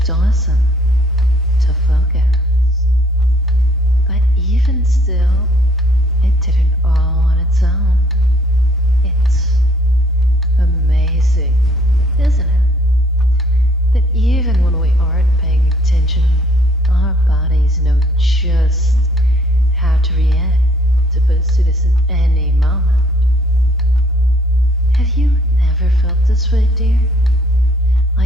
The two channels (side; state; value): both; normal; correlation 0.62